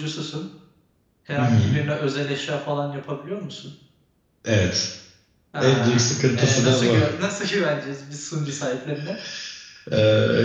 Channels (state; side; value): identical; both; correlation 1.00